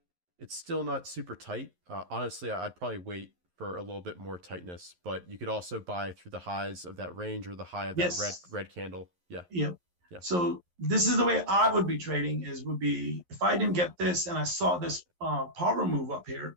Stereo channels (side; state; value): left; late; 11 ms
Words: It's still not super tight. Honestly, I'd probably wait for a little bit more tightness, but you could also buy through the highs of that range or the high of that red candle. Yeah. Yeah. So this is the way I would be trading would be if I didn't get this and I saw this power move up here,